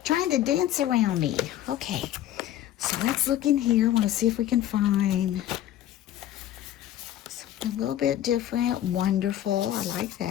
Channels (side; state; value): right; quieter; 12.3 dB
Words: trying to dance around me. Okay, so let's look in here. I want to see if we can find something a little bit different. Wonderful. I like